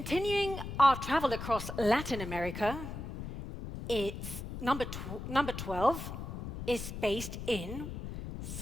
our travel across Latin America, its number 12 is based in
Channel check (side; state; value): left; noise; rumble, 8 dB below the sound